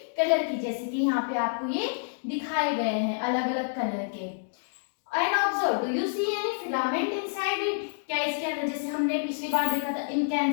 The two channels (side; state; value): right; silent; digital silence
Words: कलर की, जैसे कि यहाँ पे आपको ये दिखाए गए हैं अलग अलग कलर के। And observe, do you see any filament inside it. क्या इसके अंदर, जैसे हमने पिछली बार देखा था